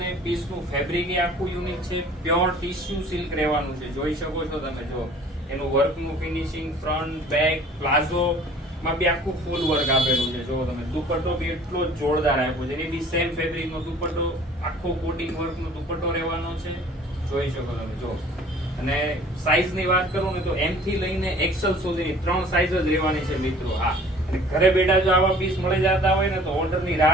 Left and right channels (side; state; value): both; normal; correlation 0.50